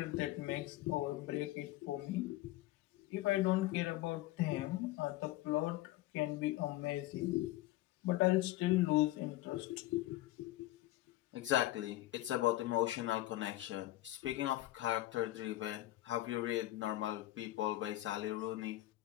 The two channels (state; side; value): quieter; right; 16.3 dB